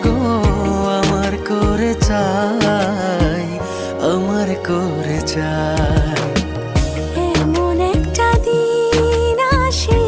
গো আমার করে চাই, আমার করে চাই।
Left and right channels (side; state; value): both; identical; correlation 1.00